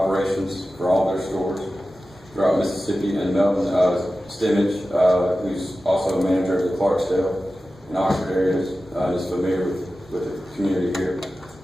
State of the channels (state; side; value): normal; both; correlation 0.94